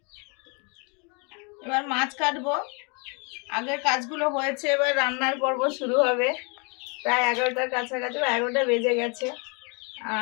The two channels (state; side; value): quieter; right; 33.4 dB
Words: এবার মাছ কাটবো। আগের কাজগুলো হয়েছে, এবার রান্নার পর্ব শুরু হবে। প্রায় 11টার কাছাকাছি, 11টা বেজে গেছে।